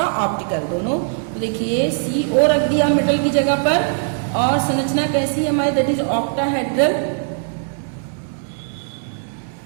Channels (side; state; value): left; silent; digital silence